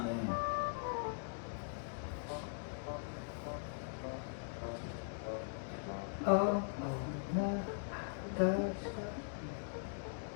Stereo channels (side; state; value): right; silent; digital silence